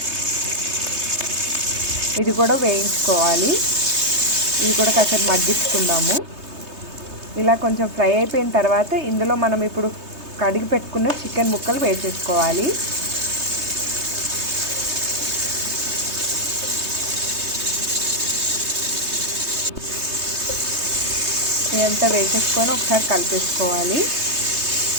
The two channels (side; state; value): left; late; 3.2 ms